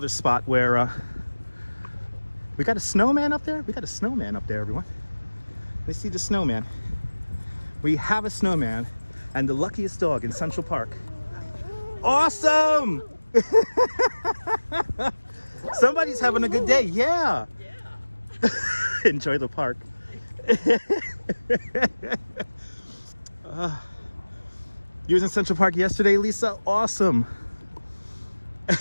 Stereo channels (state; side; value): inverted; both; correlation -1.00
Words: spot where we got a snowman up there. We got a snowman up there, everyone. Let's see the snowman. We have a snowman and the luckiest dog in Central Park. Awesome! Somebody's having a good day. Yeah. Enjoy the park. You was in Central Park yesterday, Lisa? Awesome.